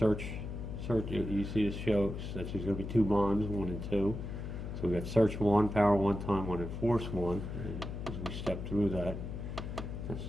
You see this shows that there's going to be 2 bonds, 1 and 2. So we got search 1, power 1, time 1, and force 1. And as we step through that, that's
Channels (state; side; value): noise; left; hum, 6 dB below the sound